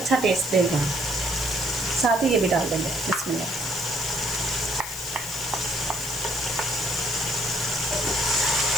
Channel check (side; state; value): left; noise; hiss, 9 dB below the sound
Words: टेस्ट देगा। साथ ही ये भी डाल देंगे। बिस्मिल्लाह।